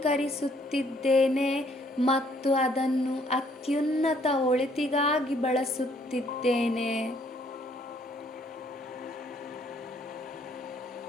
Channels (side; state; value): both; normal; correlation 0.65